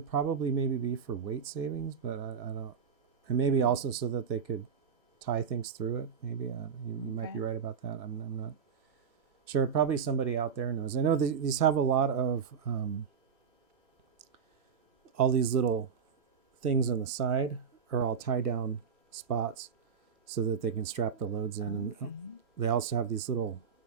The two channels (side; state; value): left; quieter; 6.7 dB